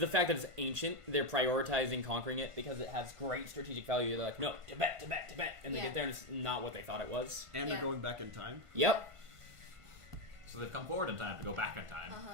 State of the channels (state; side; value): late; left; 1.5 ms